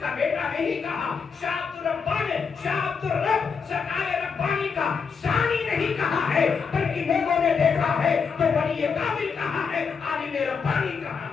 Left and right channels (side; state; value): right; quieter; 5.8 dB